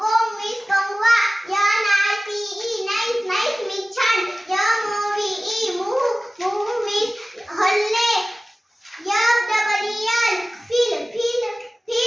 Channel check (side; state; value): both; normal; correlation 0.97